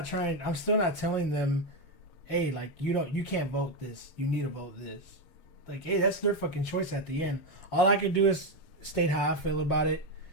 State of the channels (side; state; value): right; late; 7.1 ms